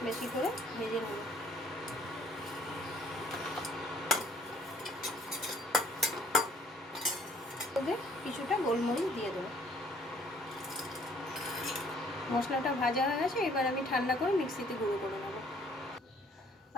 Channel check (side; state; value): both; normal; correlation 0.60